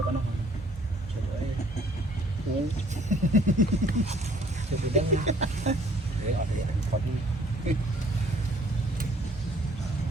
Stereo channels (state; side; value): normal; both; correlation 0.60